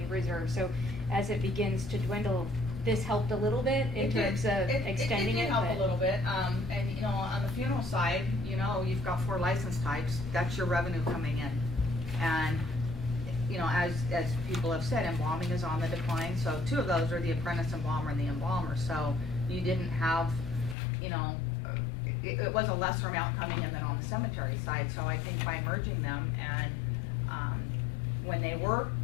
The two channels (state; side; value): drops out; right; at 20.8 s